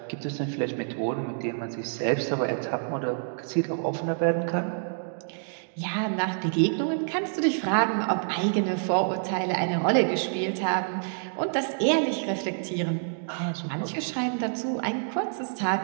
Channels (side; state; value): left; silent; digital silence